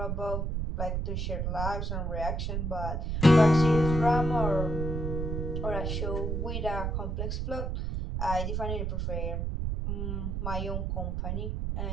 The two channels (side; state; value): right; noise; rumble, 1 dB below the sound